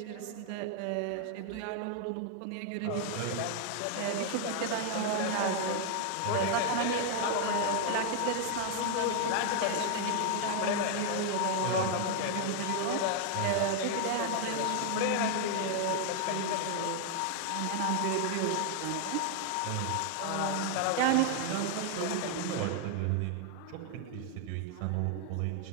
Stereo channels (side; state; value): both; different; correlation 0.00